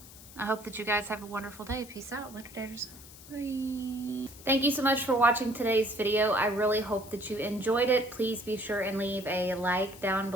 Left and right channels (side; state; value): left; noise; hiss, 18 dB below the sound